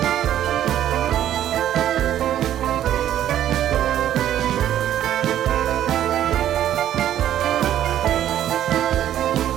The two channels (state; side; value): quieter; left; 11.5 dB